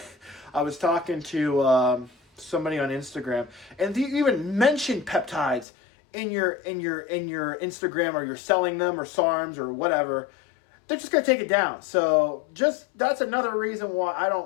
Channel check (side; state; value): right; drops out; at 5.7 s